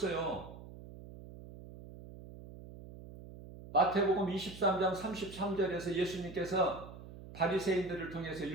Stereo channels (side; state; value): right; noise; hum, 15 dB below the sound